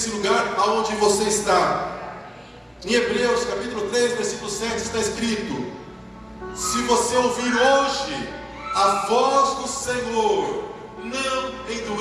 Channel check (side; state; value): both; identical; correlation 1.00